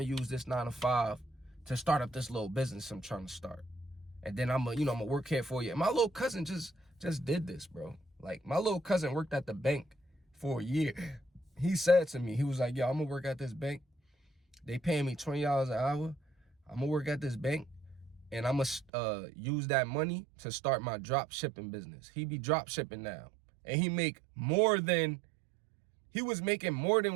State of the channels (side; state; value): left; drops out; at 18.9 s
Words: to use this 9 to 5 to start up this little business I'm trying to start. And then I'm going to work here for you. And my little cousin just did this, bro. Like, my little cousin worked at the bank for a year. He said to me, he was like, yo, I'm going to work at this bank. They paying me $20 an hour. I'm going to work at this bank. And I'm going to use that money to start my drop shipping business. He be drop shipping now. And he was making more than